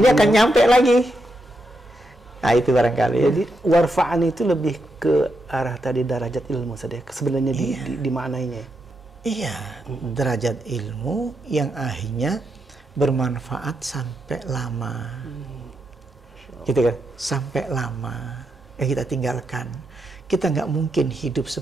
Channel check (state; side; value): normal; both; correlation 0.83